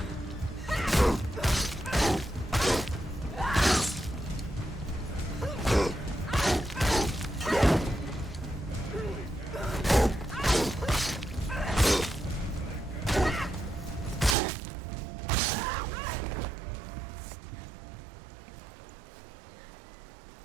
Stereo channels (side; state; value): left; drops out; at 14.4 s